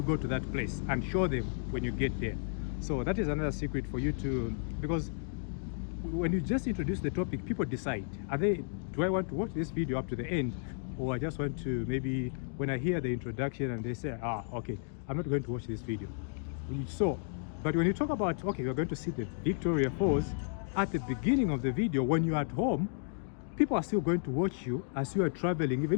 go to that place and show them when you get there. So that is another secret for you to, because when you just introduce the topic, people decide, do I want to watch this video up to the end, or I just want to, maybe when I hear the introduction and they say, okay, I'm not going to watch this video. So, but when you talk about, okay, we're going to see the Victoria Falls at the beginning of the video, when you're at home, people are still going to watch you as you are traveling, even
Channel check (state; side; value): silent; right; digital silence